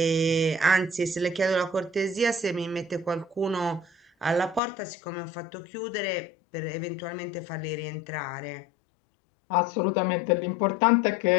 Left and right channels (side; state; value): right; drops out; at 4.6 s